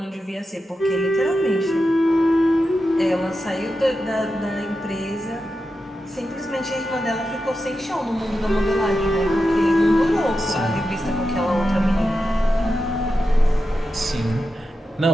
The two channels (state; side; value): normal; both; correlation 0.89